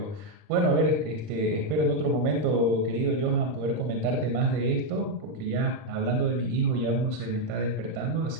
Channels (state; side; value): late; left; 40 ms